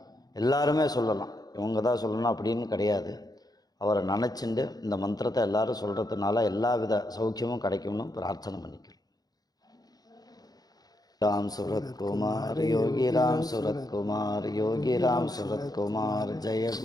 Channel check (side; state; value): right; late; 0.19 ms